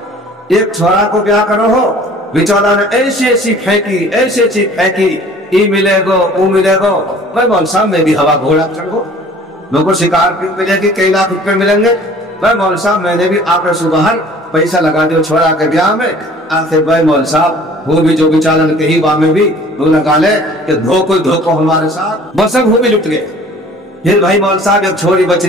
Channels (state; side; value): normal; both; correlation 0.50